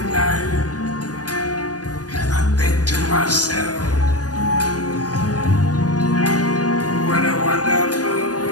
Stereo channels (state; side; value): late; right; 0.68 ms